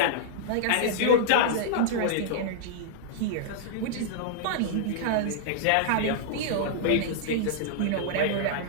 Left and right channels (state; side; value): different; both; correlation -0.02